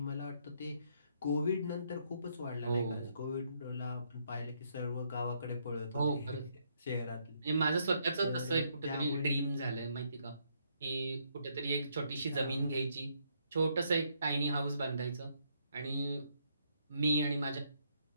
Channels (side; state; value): both; inverted; correlation -0.73